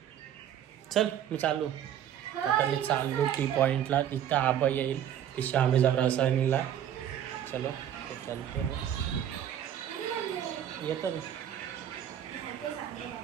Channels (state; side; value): quieter; left; 10.2 dB